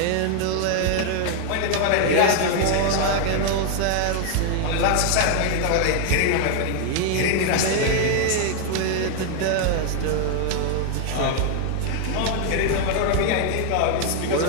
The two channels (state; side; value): different; both; correlation 0.00